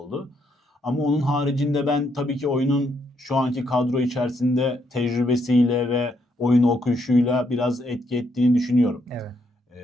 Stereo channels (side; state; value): both; normal; correlation 0.75